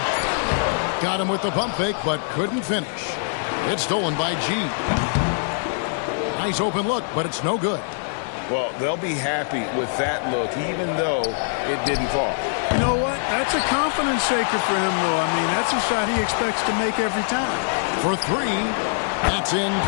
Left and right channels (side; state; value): right; silent; 57 dB below the other